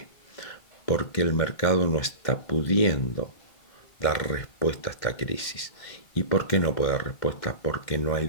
Porque el mercado no está pudiendo dar respuesta a esta crisis. ¿Y por qué no puede dar respuesta? Porque no hay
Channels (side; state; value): right; late; 2.1 ms